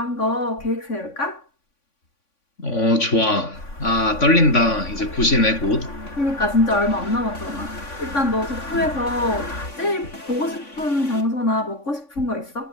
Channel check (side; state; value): right; late; 3.5 ms